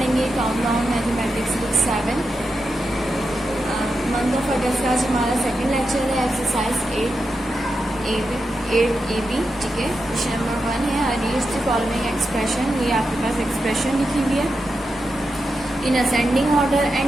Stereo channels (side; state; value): both; normal; correlation 0.88